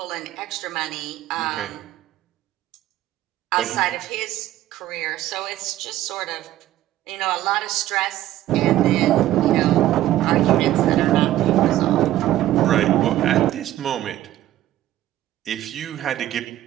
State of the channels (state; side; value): quieter; left; 13.9 dB